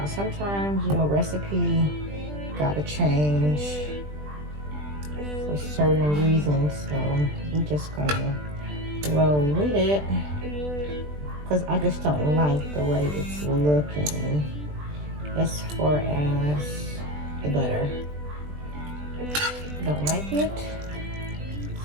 Sometimes your recipe gotta change for certain reasons, so I'm just gonna roll with it because I just don't like the way it's looking as far as the butter. Don't like it,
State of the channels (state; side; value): late; left; 20 ms